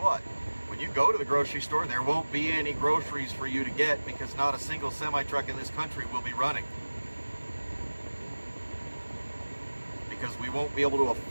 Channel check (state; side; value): inverted; both; correlation -1.00